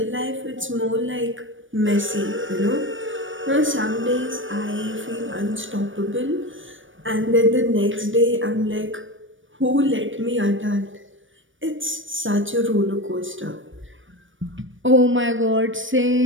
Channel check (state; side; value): late; left; 0.56 ms